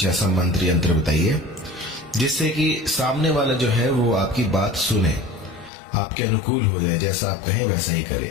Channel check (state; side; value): drops out; right; at 5.7 s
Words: ऐसा मंत्र यंत्र बताइए जिससे कि सामने वाला जो है वो आपकी बात सुने, आपके अनुकूल हो जाए, जैसा आप कहें वैसा ही